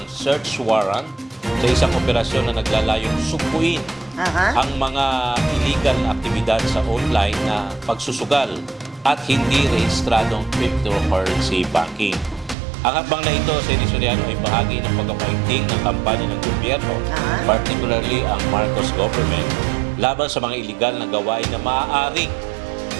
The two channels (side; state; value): left; drops out; at 12.6 s